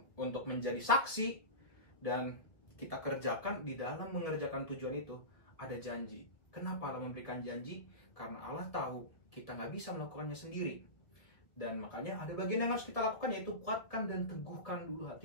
menjadi saksi, dan kita kerjakan. Di dalam mengerjakan tujuan itu ada janji. Kenapa Allah memberikan janji? Karena Allah tahu kita nggak bisa melakukannya sendiri. Dan makanya ada bagian yang harus kita lakukan, yaitu kuatkan dan teguhkan dulu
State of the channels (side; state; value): right; late; 1.5 ms